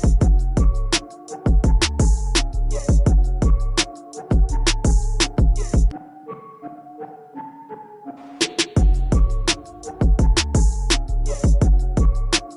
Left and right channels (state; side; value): identical; both; correlation 1.00